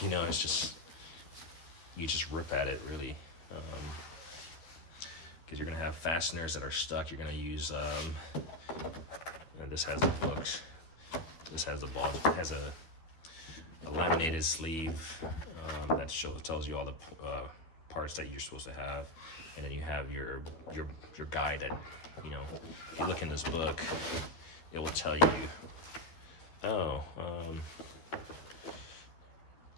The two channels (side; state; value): right; late; 12 ms